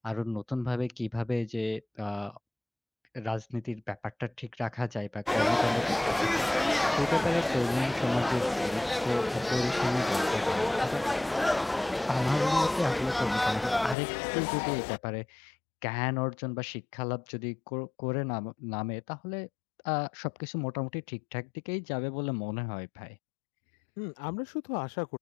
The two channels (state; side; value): drops out; right; at 14.0 s